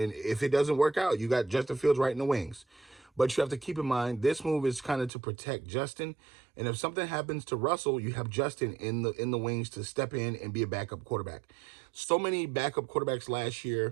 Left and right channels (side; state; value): left; drops out; at 5.1 s